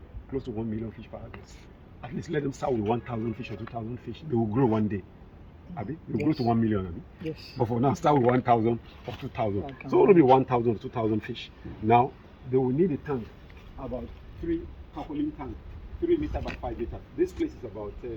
close to 1 million fish per harvest. At least let them start with 1,000 fish or 2,000 fish. They will grow one day. Abi? They will grow to 1 million. Abi? Yes. But for now, start with 1,000 or 2,000. So it will be 1,000 or 2,000 fish. Now, they will need a tank, about 3 Tarpauline tanks, 3 meters by 5 meters. This place is about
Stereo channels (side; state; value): both; identical; correlation 1.00